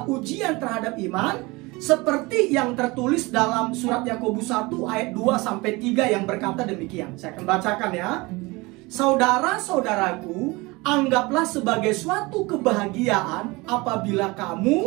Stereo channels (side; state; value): left; quieter; 23.7 dB